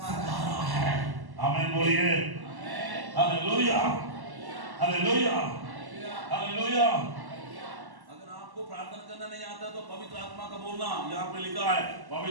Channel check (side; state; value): left; late; 1.1 ms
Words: रहा है। आमीन बोलिए, हालेलुया, हालेलुया, हालेलुया। अगर आपको प्रार्थना करना नहीं आता तो पवित्र आत्मा का बोलना, यहाँ पे लिखा है